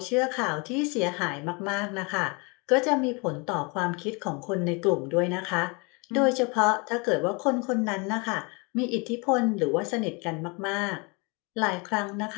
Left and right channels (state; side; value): quieter; right; 30.3 dB